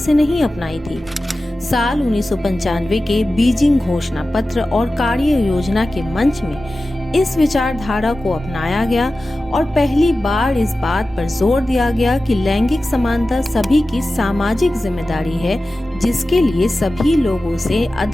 नहीं अपनाई थी। साल 1995 के बीजिंग घोषणा पत्र और कार्य योजना के मंच में इस विचारधारा को अपनाया गया और पहली बार इस बात पर जोर दिया गया कि लैंगिक समानता सभी की सामाजिक जिम्मेदारी है, जिसके लिए सभी लोगों से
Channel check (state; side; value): normal; both; correlation 0.95